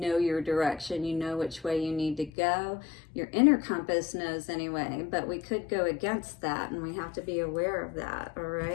your direction. You know which way you need to go. Your inner compass knows anyway, but we could go against that, and we have to be aware of that, all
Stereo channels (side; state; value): right; drops out; at 2.3 s